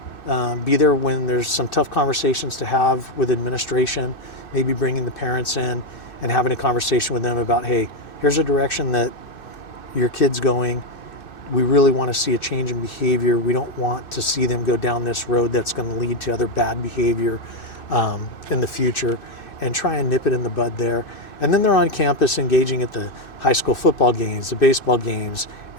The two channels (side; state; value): right; late; 2.6 ms